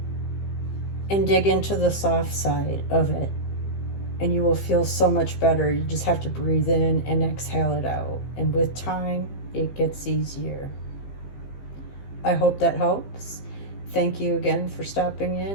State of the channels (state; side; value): late; right; 15 ms